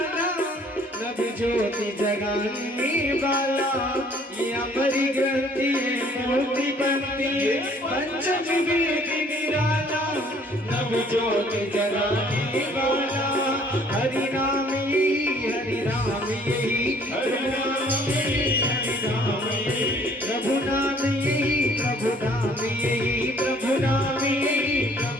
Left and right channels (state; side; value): normal; both; correlation 0.58